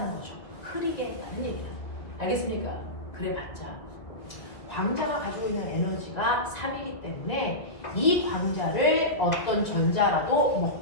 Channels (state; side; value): late; right; 1.9 ms